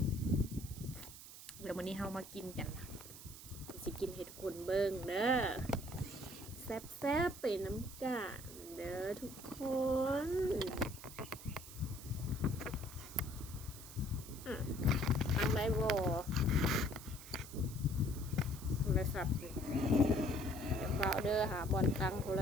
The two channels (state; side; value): noise; right; hiss, 14 dB below the sound